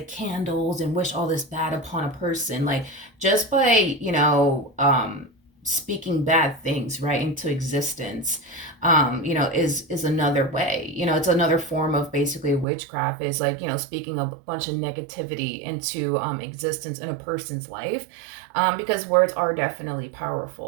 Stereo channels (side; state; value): left; drops out; at 12.7 s